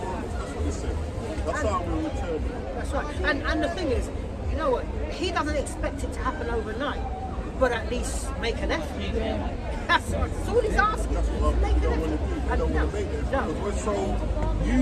That's what he said. That's how we'll return. That's right. And the thing is, you know what? He doesn't expect it to happen overnight, but at least make an effort. That's all he's asking. That's what we Make an don't want to effort. do. We don't want to make it. No. Because we're so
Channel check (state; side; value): identical; both; correlation 1.00